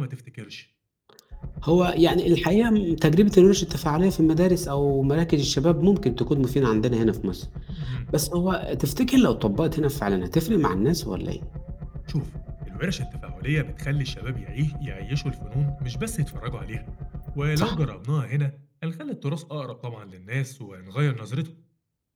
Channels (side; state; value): both; identical; correlation 1.00